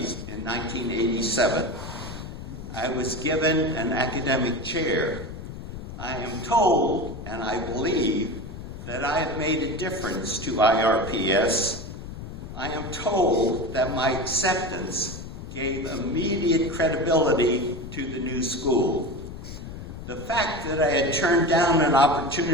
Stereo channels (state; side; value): noise; left; rumble, 10 dB below the sound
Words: in 1987. I was given an academic chair. I am told, and I believe, that I have made a difference to IRPS. I am told that my acceptance gave immediate credibility to the new school. The fact that I had turned down an